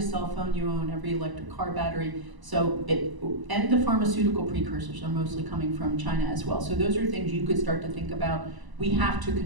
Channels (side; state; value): left; late; 1.0 ms